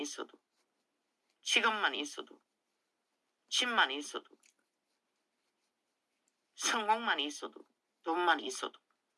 직업만 있어도, 집만 있어도, 성공만 있어도, 돈만 있어도,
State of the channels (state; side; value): identical; both; correlation 1.00